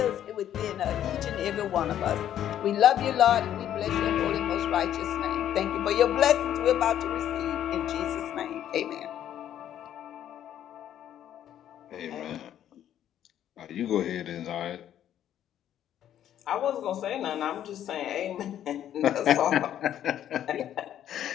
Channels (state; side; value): quieter; right; 10.9 dB